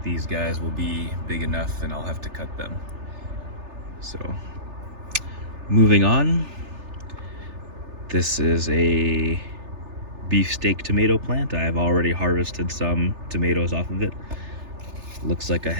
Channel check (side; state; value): left; late; 3.3 ms